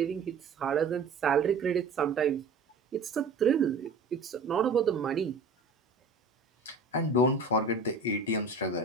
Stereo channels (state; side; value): quieter; left; 4.0 dB